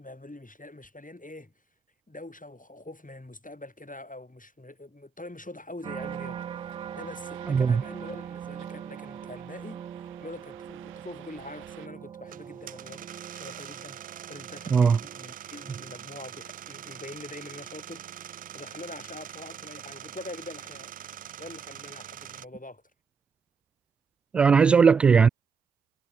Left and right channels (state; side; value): quieter; left; 5.5 dB